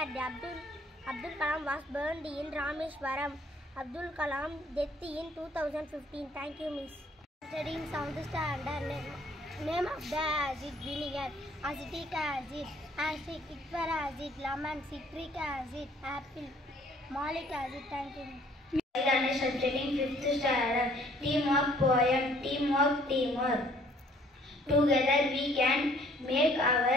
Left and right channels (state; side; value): normal; both; correlation 0.59